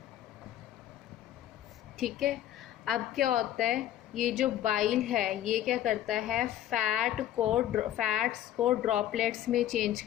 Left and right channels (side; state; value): right; quieter; 12.2 dB